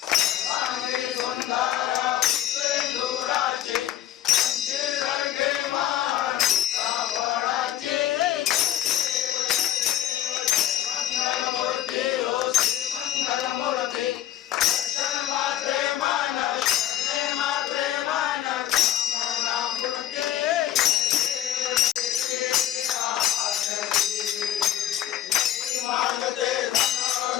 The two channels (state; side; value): quieter; right; 12.0 dB